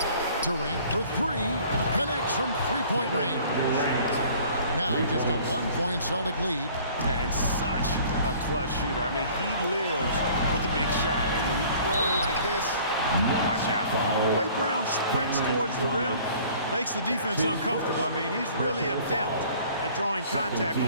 Durant for three, connects from three-point range. Now just a 1-point Celtic lead. And such a clutch shooter. I mean, he lives with a big shot. And when he's rolling like this, watch out. The way Brown sprints towards the rim makes the defense uncomfortable. I mean, he's really adept at drawing contact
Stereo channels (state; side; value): inverted; both; correlation -0.51